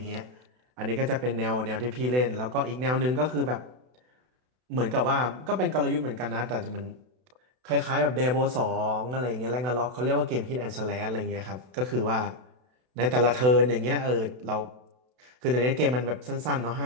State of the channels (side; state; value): left; late; 32 ms